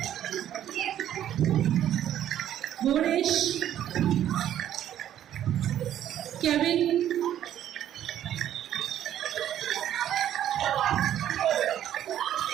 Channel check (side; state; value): left; quieter; 11.2 dB